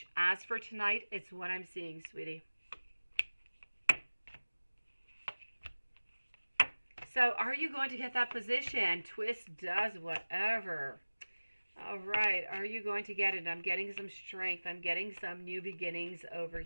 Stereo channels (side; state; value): both; inverted; correlation -1.00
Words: As for tonight, it's what I'm seeing, sweetie. So are you going to get that position? Twist does whatever. All right, are you going to get it? I'm getting some strength. I'm getting some new beginnings over